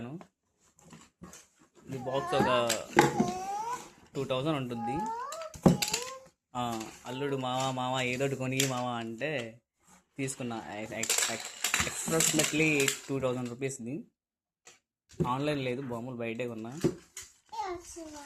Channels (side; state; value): both; identical; correlation 1.00